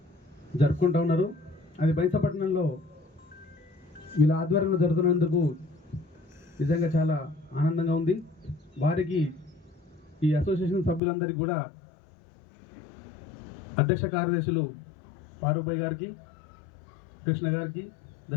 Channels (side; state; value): right; drops out; at 11.0 s